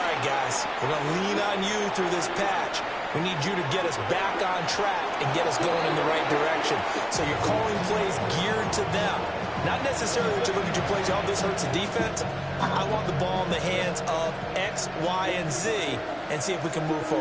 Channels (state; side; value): identical; both; correlation 1.00